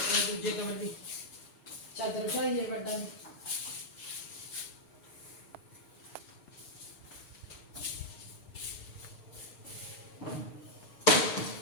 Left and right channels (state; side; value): late; right; 6.7 ms